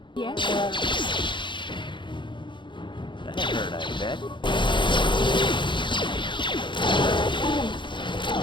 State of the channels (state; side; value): late; right; 0.23 ms